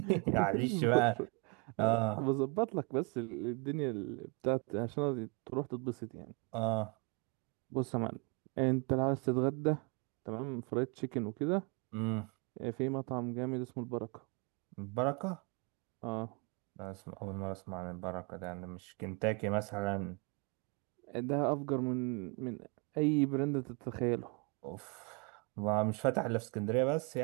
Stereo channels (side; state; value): left; quieter; 29.5 dB